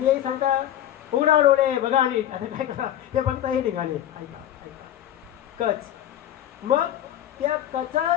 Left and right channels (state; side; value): quieter; right; 11.6 dB